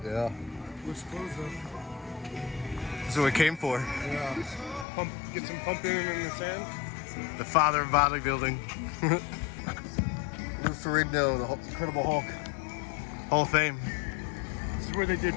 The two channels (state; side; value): drops out; right; at 4.9 s